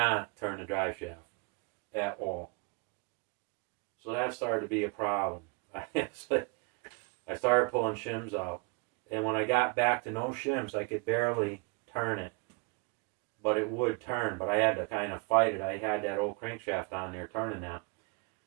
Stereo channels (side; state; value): left; quieter; 30.7 dB